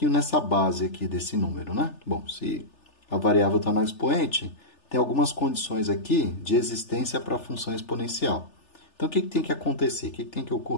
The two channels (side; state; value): right; late; 3.3 ms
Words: nessa base aqui desse número, né? Bom, se a variável está no expoente, tem algumas condições aqui de existência para a função exponencial. Então, o que tem que acontecer? O que tem que